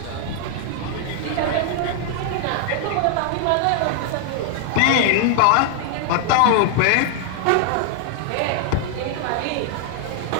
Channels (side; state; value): both; different; correlation -0.01